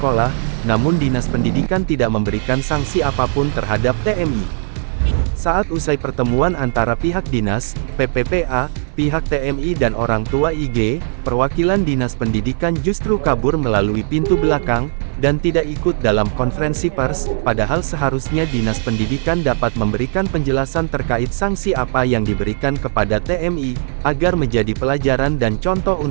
namun Dinas Pendidikan tidak memberikan sanksi apapun terhadap TMI. Saat usai pertemuan antara pihak dinas, PPPA, pihak TMI dan orang tua IG, perwakilan Dinas Pendidikan justru kabur melalui pintu belakang, dan tidak ikut dalam konferensi pers, padahal seharusnya Dinas Pendidikan dapat memberikan penjelasan terkait sanksi apa yang diberikan kepada TMI, agar menjadi pelajaran dan contoh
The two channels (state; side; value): silent; left; 56 dB below the other